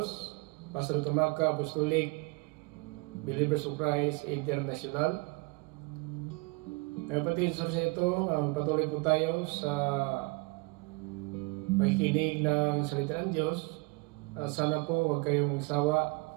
Pastor Tamaka, Apostolic Believers of Christ International. Mga kapatid, sa ito, patuloy po tayo sa makikinig ng salita ng Diyos. Sana po huwag kayong magsawa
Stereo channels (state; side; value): quieter; left; 27.5 dB